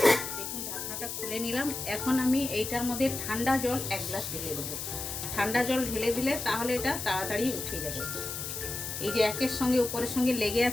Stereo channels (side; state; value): left; noise; hiss, 5 dB below the sound